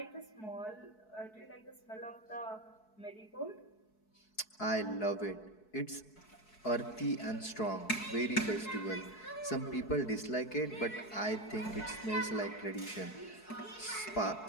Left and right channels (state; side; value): late; right; 4.7 ms